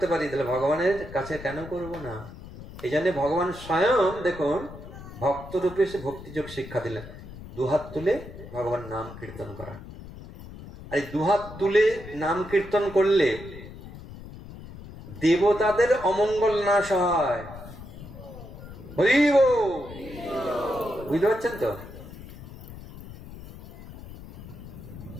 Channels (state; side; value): noise; left; rumble, 14 dB below the sound